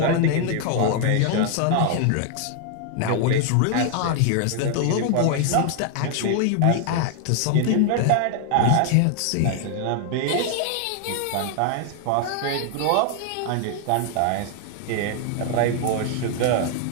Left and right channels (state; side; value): different; both; correlation 0.00